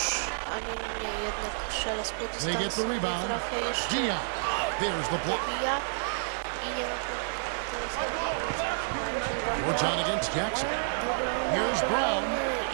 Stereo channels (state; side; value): silent; left; digital silence